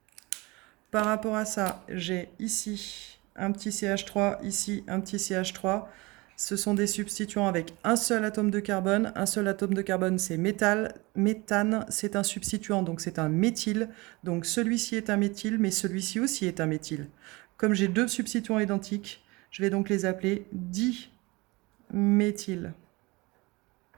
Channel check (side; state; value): left; quieter; 23.9 dB